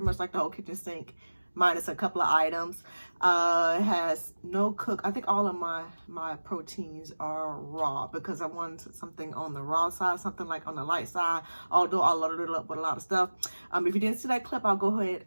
much like the whole kitchen sink, minus a couple of items. It has no cook. I think all of my proteins are raw because I wanted something on the raw side, something like on the light side. Although I loaded it up with a lot of stuff. If you didn't see that clip, I'll go ahead.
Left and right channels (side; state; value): both; inverted; correlation -1.00